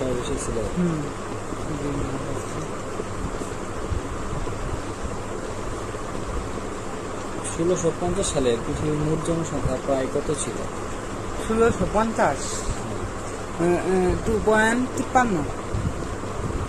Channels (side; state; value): both; identical; correlation 1.00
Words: বেশি ছিল। 1650 সালে পৃথিবীর মোট জনসংখ্যা প্রায় কত ছিল? 1650 2.53